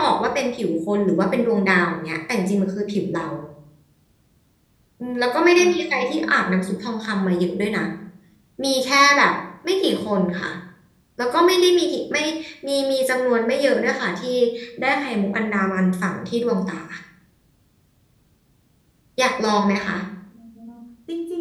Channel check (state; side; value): identical; both; correlation 1.00